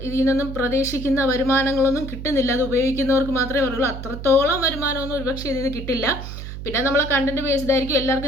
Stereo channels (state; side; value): noise; right; hum, 9 dB below the sound